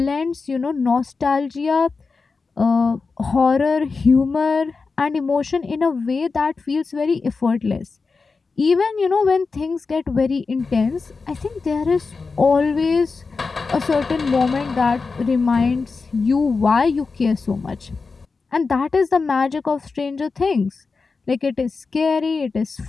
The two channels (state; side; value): quieter; right; 4.4 dB